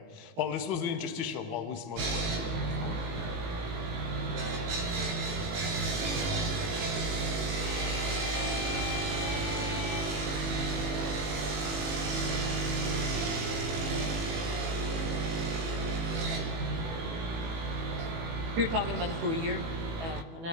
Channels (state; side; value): late; left; 18 ms